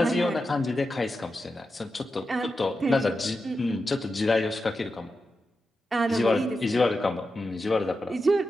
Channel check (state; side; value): normal; both; correlation 0.89